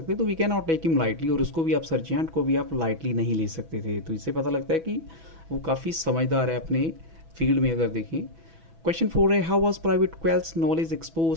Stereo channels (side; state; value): left; late; 6.1 ms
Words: तो we can not take him lightly, और उसको भी आप सर्जियंट को भी आप लाइटली नहीं ले सकते थे। तो इससे पता लगता है कि वो काफ़ी समझदार है अपने फील्ड में। अगर देखें क्वेश्चन 4 है, how was private Quelch knowledge